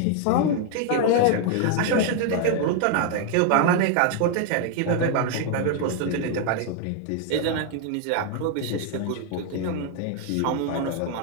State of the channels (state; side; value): different; both; correlation 0.00